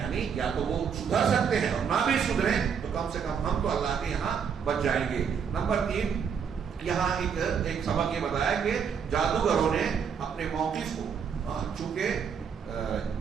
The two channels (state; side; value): quieter; left; 7.0 dB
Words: یا تو وہ سدھر سکتے ہیں اور نہ بھی سدھریں تو کم سے کم ہم تو اللہ کے یہاں بچ جائیں گے۔ نمبر 3 یہاں ایک سبق یہ بتایا کہ جادوگروں نے اپنے موقف کو چونکہ